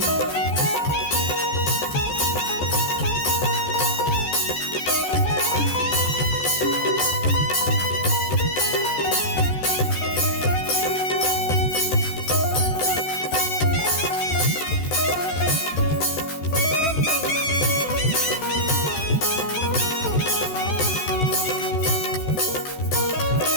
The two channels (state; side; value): late; right; 14 ms